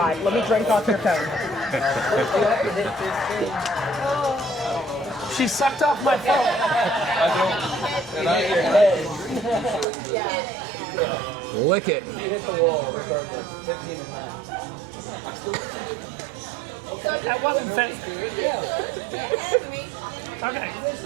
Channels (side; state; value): left; drops out; at 9.9 s